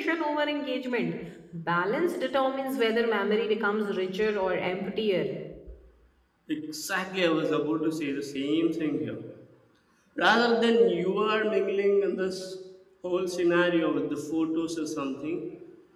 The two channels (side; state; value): both; identical; correlation 1.00